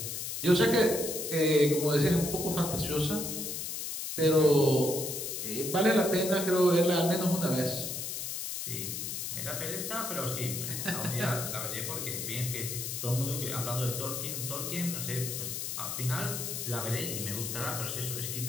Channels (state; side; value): noise; left; hiss, 4 dB below the sound